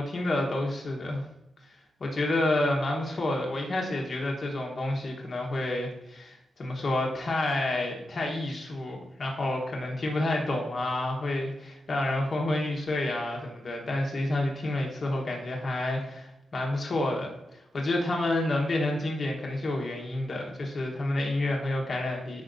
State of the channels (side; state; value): both; normal; correlation 0.88